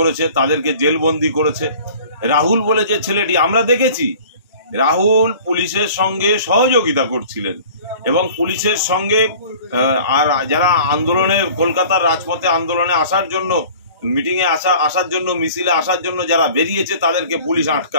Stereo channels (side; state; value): both; inverted; correlation -0.45